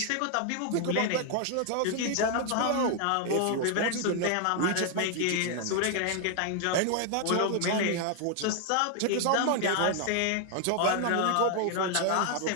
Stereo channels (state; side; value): different; both; correlation 0.00